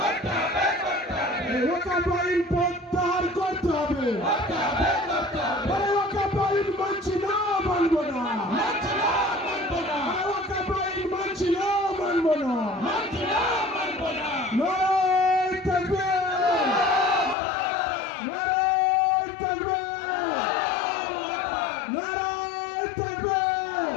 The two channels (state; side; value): drops out; right; at 17.4 s